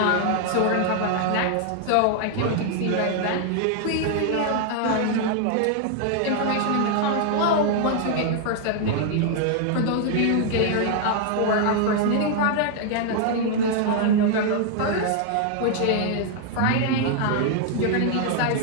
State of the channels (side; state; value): both; different; correlation 0.00